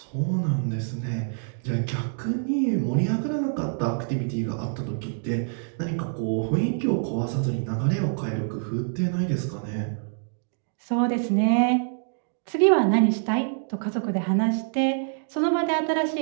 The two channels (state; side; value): silent; left; digital silence